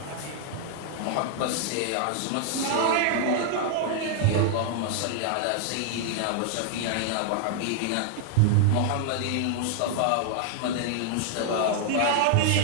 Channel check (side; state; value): both; different; correlation 0.00